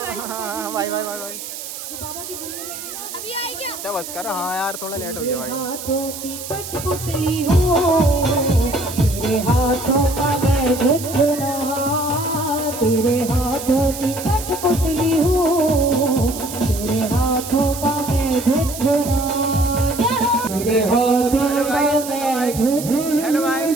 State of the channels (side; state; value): right; noise; hiss, 10 dB below the sound